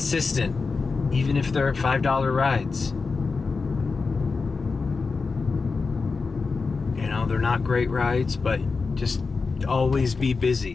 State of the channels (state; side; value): quieter; right; 4.5 dB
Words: even if they're $5 rides. You know, they're not great rides, but just always be